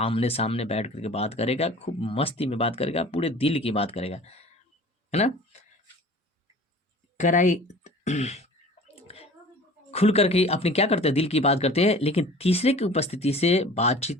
सामने बैठ करके बात करेगा, खूब मस्ती में बात करेगा, पूरे दिल की बात करेगा, है ना। कराई खुल करके अपनी क्या करते हैं, दिल की बात करते हैं। लेकिन तीसरे की उपस्थिति से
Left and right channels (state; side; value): normal; both; correlation 0.44